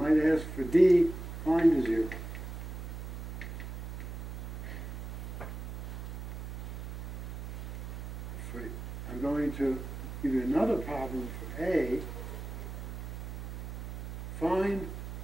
ask for D, find a 0. I'm going to give you another problem for A. Find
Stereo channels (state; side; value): noise; right; hum, 7 dB below the sound